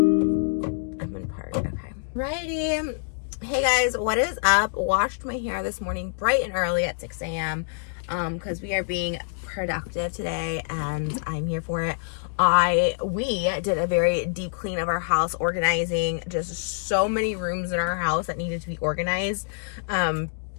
I'm in park. Okay. Righty. Hey guys, what is up? Washed my hair this morning bright and early at 6 a.m. Because we are being productive today and I'm here for it. We did a very deep clean of our house, organizing just so many rooms in our house that needed to be organized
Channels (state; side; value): silent; right; digital silence